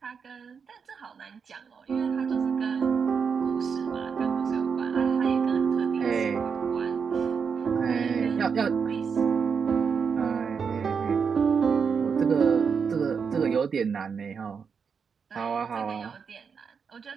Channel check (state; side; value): quieter; left; 6.1 dB